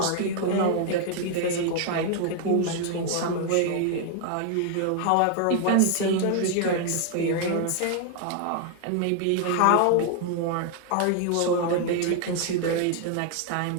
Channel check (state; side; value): different; both; correlation 0.00